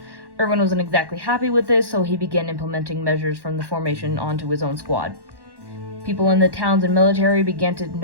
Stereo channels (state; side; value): late; left; 1.1 ms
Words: Erwin wasn't exactly happy with this, so he began implementing measures from the formation onto his own squad. People in the towns and military began to